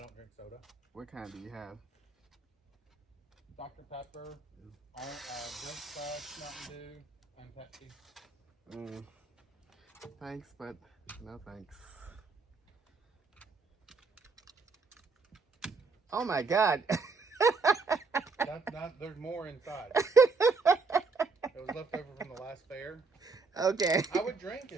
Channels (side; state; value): left; quieter; 4.3 dB